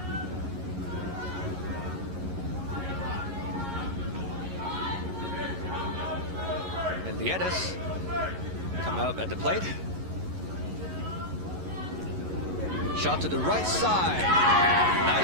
And Liedes come out at the plate. Shot to the right side,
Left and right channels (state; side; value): late; left; 11 ms